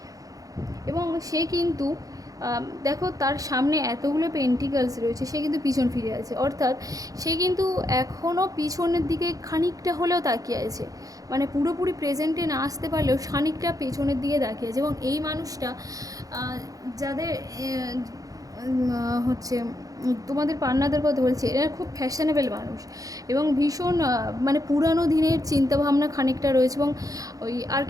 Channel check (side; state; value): left; late; 0.17 ms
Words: এবং সে কিন্তু দেখো তার সামনে এতগুলো পেন্টিকালস রয়েছে, সে কিন্তু পিছন ফিরে আছে, অর্থাৎ সে কিন্তু এখনও পিছনের দিকে খানিকটা হলেও তাকিয়ে আছে। মানে পুরোপুরি প্রেজেন্টে না আসতে পারলেও খানিকটা পেছনের দিকে তাকিয়ে আছে। এবং এই মানুষটা যাদের হচ্ছে তোমাদের পার্টনারদের কথা বলছি, এরা খুব ফ্যাশনেবল মানুষ এবং ভীষণ মানে পুরানো দিনের চিন্তাভাবনা খানিকটা রয়েছে। এবং ওই